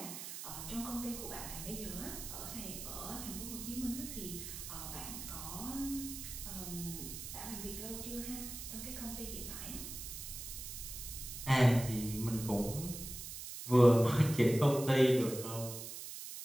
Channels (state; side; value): noise; right; hiss, 8 dB below the sound